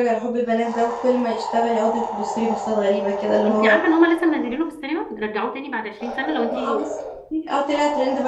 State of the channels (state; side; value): identical; both; correlation 1.00